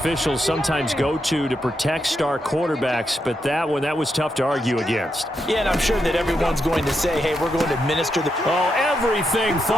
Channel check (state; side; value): normal; both; correlation 0.83